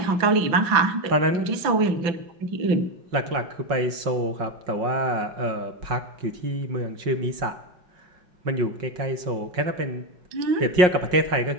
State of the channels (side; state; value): left; late; 5.5 ms